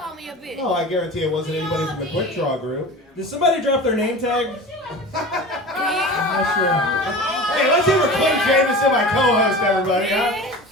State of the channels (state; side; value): normal; both; correlation 0.35